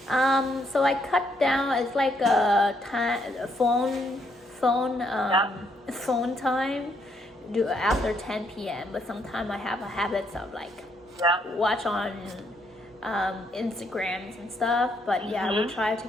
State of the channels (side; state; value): both; normal; correlation 0.73